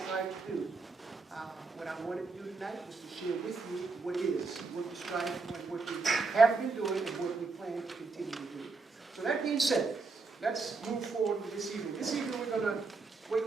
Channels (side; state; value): left; quieter; 4.2 dB